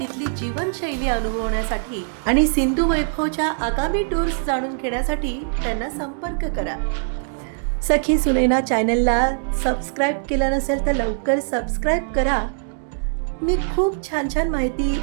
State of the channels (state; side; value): silent; left; digital silence